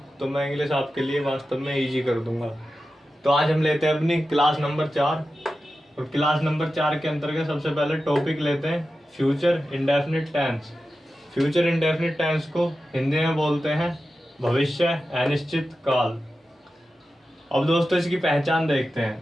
तो मैं इंग्लिश आपके लिए वास्तव में इजी कर दूंगा। तो आज हम लेते हैं अपनी क्लास नंबर 4। और क्लास नंबर 4 के अंतर्गत सबसे पहले टॉपिक लेते हैं future indefinite tense. Future indefinite tense को हिंदी में बोलते हैं भविष्य अनिश्चित काल। अब दोस्तों इसकी पहचान देखते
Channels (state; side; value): normal; both; correlation 0.92